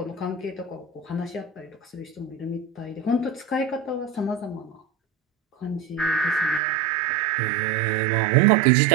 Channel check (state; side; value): drops out; left; at 6.6 s